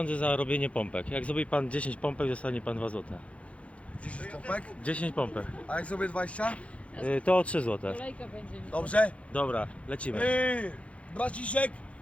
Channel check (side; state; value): right; late; 0.063 ms